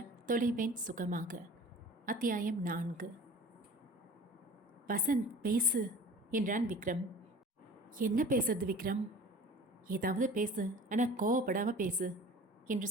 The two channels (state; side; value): normal; both; correlation 0.42